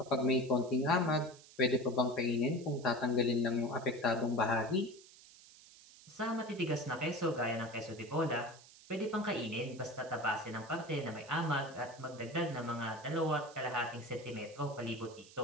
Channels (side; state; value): right; noise; hiss, 21 dB below the sound